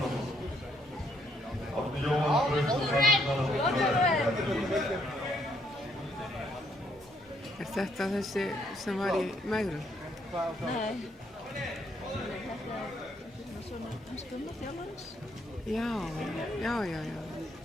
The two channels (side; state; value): both; normal; correlation 0.72